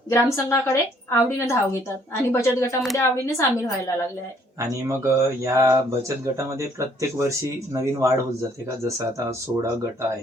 ग्रामसंघाकडे आवडीनं धाव घेतात आणि बचत गटामध्ये आवडीने सामील व्हायला लागले आहे. आणि मग या बचत गटामध्ये प्रत्येक वर्षी नवीन वाढ होत जाते का? जसं आता 16 गट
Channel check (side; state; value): both; normal; correlation 0.64